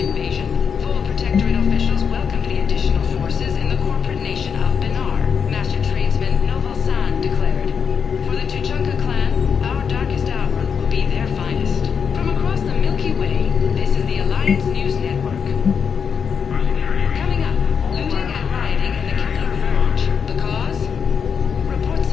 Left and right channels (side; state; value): right; quieter; 6.6 dB